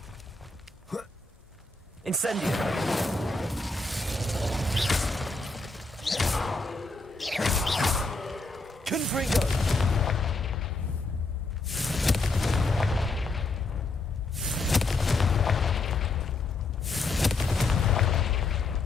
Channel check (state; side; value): quieter; right; 3.4 dB